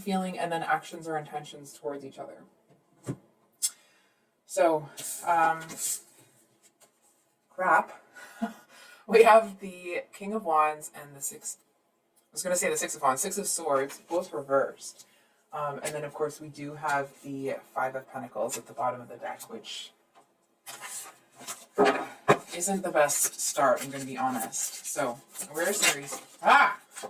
and then actions or intentions towards each other. So, crap. We have the King of Wands and the Six of Wands, Six of Swords, both reversed. And then, of course, we do have the Five of Pentacles at the bottom of the deck, which isn't the best start, I'm going to be honest. So, where's Aries?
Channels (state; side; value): identical; both; correlation 1.00